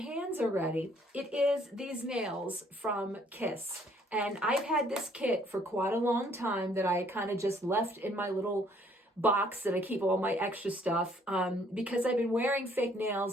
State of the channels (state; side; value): normal; both; correlation 0.63